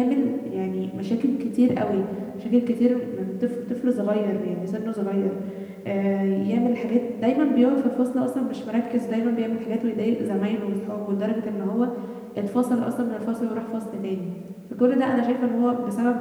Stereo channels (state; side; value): identical; both; correlation 1.00